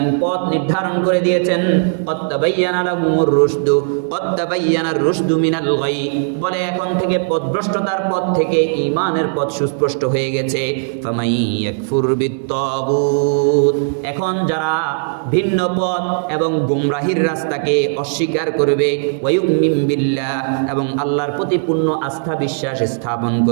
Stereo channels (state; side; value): silent; left; digital silence